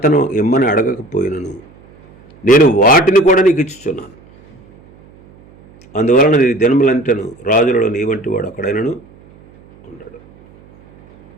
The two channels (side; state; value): right; noise; hum, 26 dB below the sound